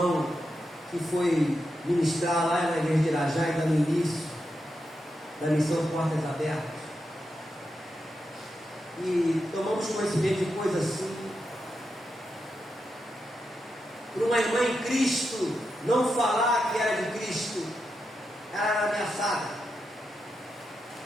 que foi ministrar lá na igreja de Irajá, ainda no início da missão Portas Abertas. E tomamos conhecimento de coisas assim. Por uma irmã em Cristo não falar que era de Cristo, ela era ameaçada.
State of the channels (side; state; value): both; normal; correlation 0.86